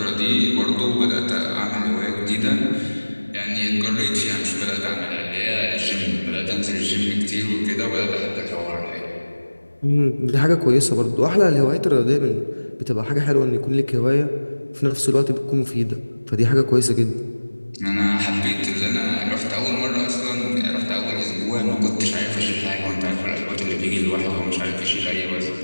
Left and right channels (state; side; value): inverted; both; correlation -1.00